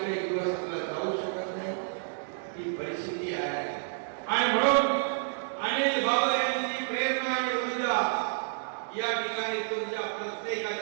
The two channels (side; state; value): left; silent; digital silence